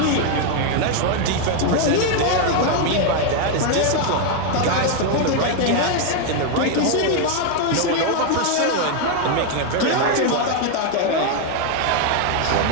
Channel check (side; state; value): both; different; correlation 0.00